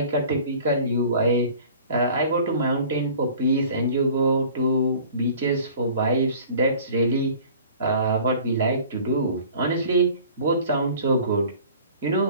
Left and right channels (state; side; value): inverted; both; correlation -0.47